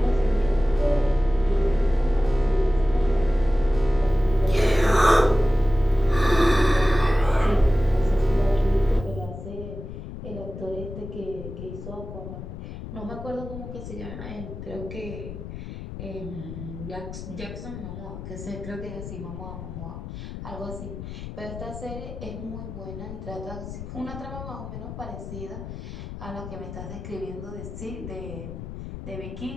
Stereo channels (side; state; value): left; noise; rumble, 9 dB below the sound